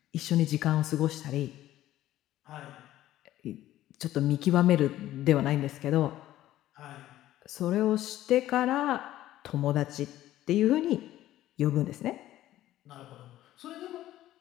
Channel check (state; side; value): quieter; right; 14.1 dB